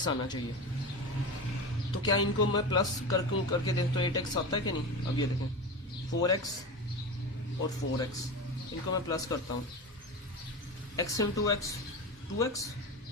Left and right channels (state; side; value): normal; both; correlation 0.25